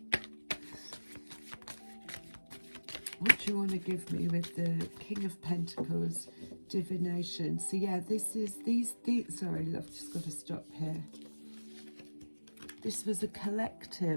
What do you want to give me with the King of Pentacles, divination? So yeah, this is these. Sorry, love, just got to stop here. This was a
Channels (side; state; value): both; inverted; correlation -1.00